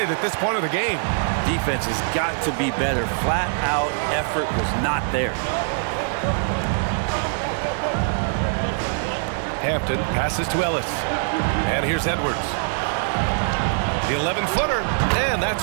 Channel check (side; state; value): left; silent; 63 dB below the other